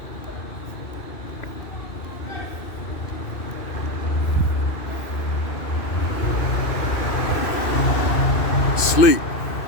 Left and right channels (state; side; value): late; right; 2.5 ms